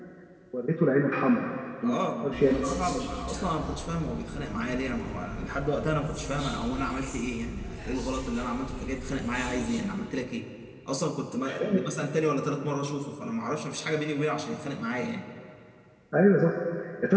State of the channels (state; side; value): identical; both; correlation 1.00